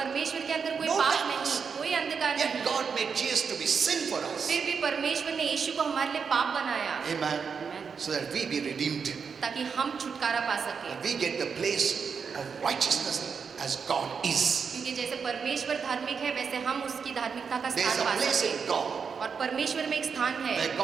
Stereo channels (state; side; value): quieter; left; 6.0 dB